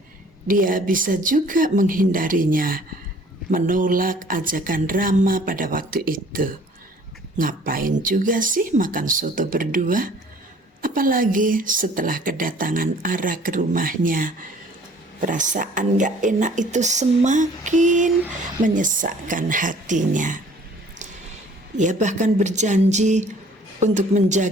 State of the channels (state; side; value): normal; both; correlation 0.54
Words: dia bisa juga menghindarinya, menolak ajakan Rama pada waktu itu. Ngapain juga sih makan soto berdua? Apalagi setelah kedatangan Ara ke rumahnya. Perasaan gak enak itu semakin menyesakkan hatinya. Ia bahkan berjanji untuk